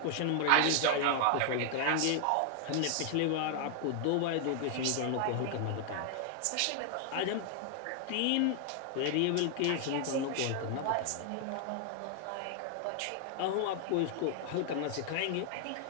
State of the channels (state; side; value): different; both; correlation 0.00